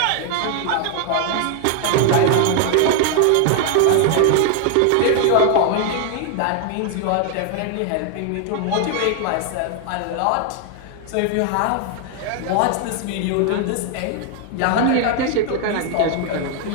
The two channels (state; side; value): different; both; correlation 0.00